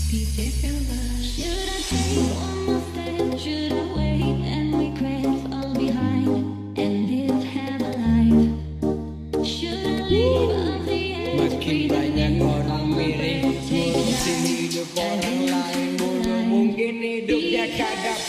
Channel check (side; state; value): both; identical; correlation 1.00